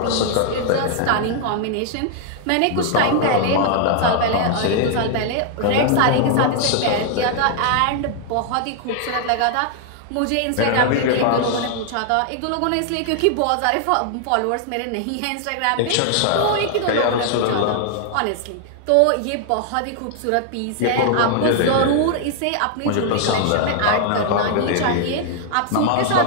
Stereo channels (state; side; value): different; both; correlation 0.00